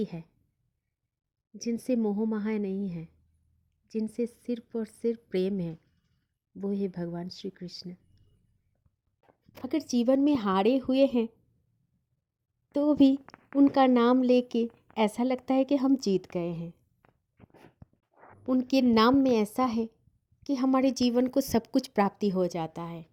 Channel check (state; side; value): identical; both; correlation 1.00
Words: है जिनसे मोह माया नहीं है, जिनसे सिर्फ और सिर्फ प्रेम है, वो है भगवान श्री कृष्ण। अगर जीवन में हारे हुए हैं तो भी उनका नाम लेके ऐसा लगता है कि हम जीत गए हैं। उनके नाम में ऐसा है कि हमारे जीवन को सब कुछ प्राप्ति हो जाता है।